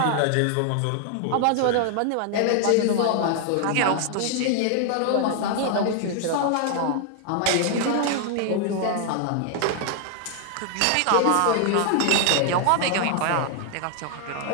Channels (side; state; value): both; different; correlation 0.00